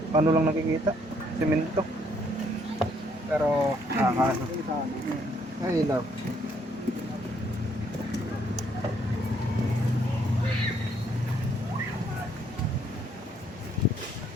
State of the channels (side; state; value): both; normal; correlation 0.68